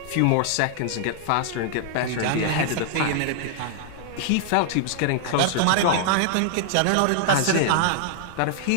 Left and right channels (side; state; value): both; different; correlation -0.01